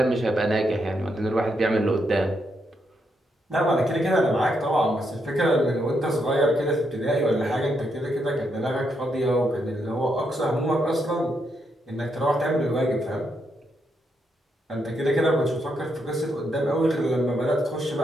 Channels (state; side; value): normal; both; correlation 0.79